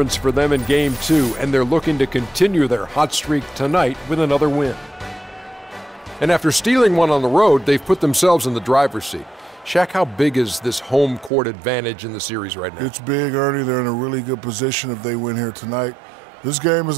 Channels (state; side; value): drops out; left; at 11.3 s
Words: for them in Game 2, and they're looking to continue their hot streak tonight with another win. And after stealing one on the road, they've put themselves in the driver's seat. Shaq, how big is this home court advantage in the series right now? It's big, Ernie. They're in a really good position if they win here tonight. This game is